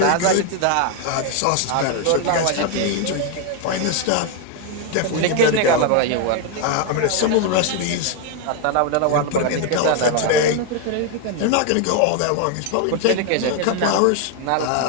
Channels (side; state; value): both; different; correlation 0.01